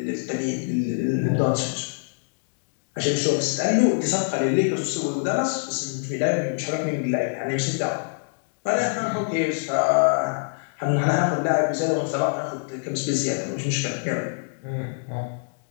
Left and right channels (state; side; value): silent; right; digital silence